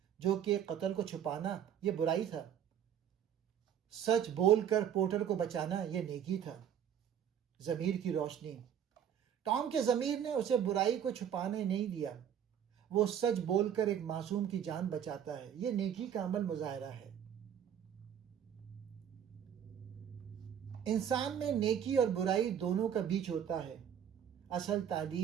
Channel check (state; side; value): quieter; left; 9.2 dB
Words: جو کہ قتل کو چھپانا یہ برائی تھا، سچ بول کر پورٹر کو بچانا یہ نیکی تھا۔ ضمیر کی روشنی۔ ٹام کے ضمیر نے اسے برائی کو چھپانے نہیں دیا، وہ سچ بول کر ایک معصوم کی جان بچاتا ہے، یہ نیکی کا عمل مظاہرہ ہے۔ انسان میں نیکی اور برائی دونوں کا بیچ ہوتا ہے۔ اصل